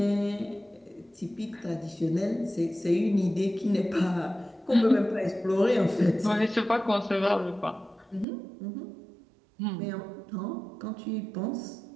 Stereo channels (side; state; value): left; drops out; at 8.2 s